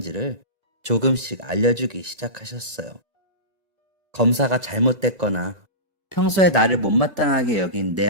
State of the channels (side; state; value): left; late; 1.9 ms